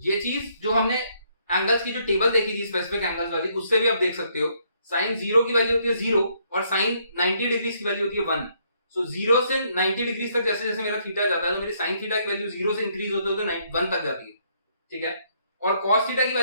ये चीज जो हमने एंगल्स की जो टेबल देखी थी स्पेसिफिक एंगल्स वाली, उससे भी आप देख सकते हो sin 0 की वैल्यू होती है 0 और sin 90 डिग्री की वैल्यू होती है 1। सो 0 से 90 डिग्री तक जैसे जैसे मेरा थीटा जाता है तो मेरी sin थीटा की वैल्यू 0 से इंक्रीज होते होते 1 तक जाती है। ठीक है, और cos थीटा की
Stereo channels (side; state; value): both; inverted; correlation -0.70